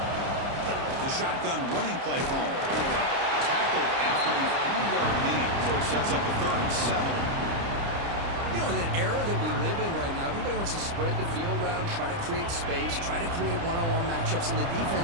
The shotgun running play home. Tackled after a 3-yard gain, so it sets up a 3rd and 7. You know, in an era that we live in right now, everybody wants to spread the field around, try to create space, try to create one-on-one matchups, and the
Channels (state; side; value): late; left; 30 ms